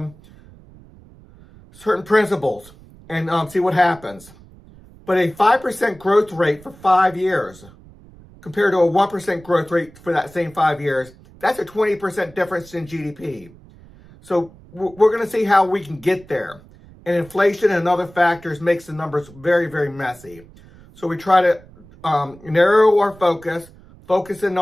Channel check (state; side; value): noise; right; rumble, 23 dB below the sound